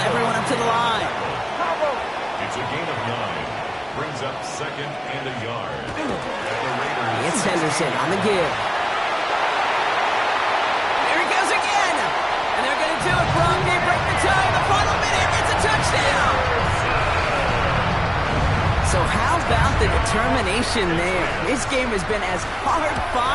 up to the line. It's a gain of 9. Brings up second and a yard. And the Raiders. It's Henderson on the give. There he goes again. And they're going to do it, Brock. They break the tie in the final minute. It's a touchdown. So how about the determination there? This game has been as hard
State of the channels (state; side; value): identical; both; correlation 1.00